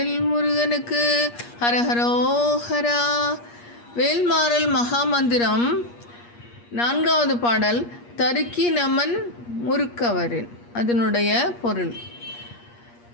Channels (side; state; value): right; late; 8.4 ms